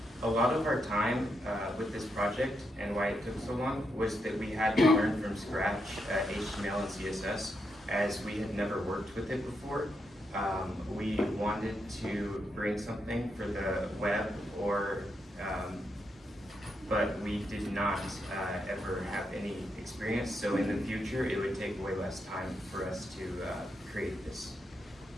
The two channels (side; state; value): both; normal; correlation 0.82